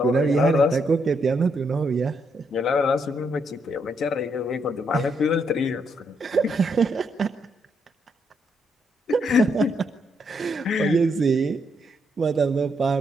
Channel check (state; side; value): normal; both; correlation 0.76